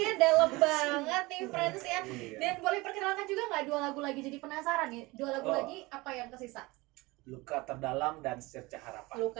dalam banget nih friends ya. Dan boleh perkenalkan juga nggak 2 lagu lagi, jadi penasaran nih 2 lagu Oh. lagi apa yang kesisa? Luka Terdalam dan Secerca Harapan.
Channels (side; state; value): left; quieter; 22.5 dB